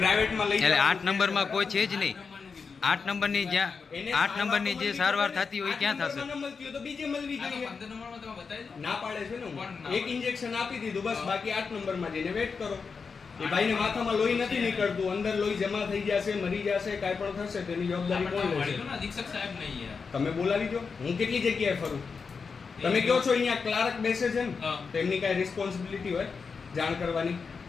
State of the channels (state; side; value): quieter; right; 5.2 dB